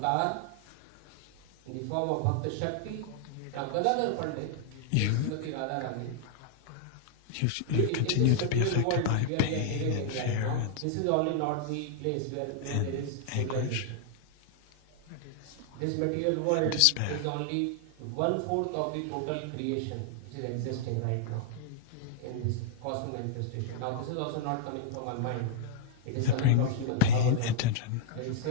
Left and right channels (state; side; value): different; both; correlation -0.01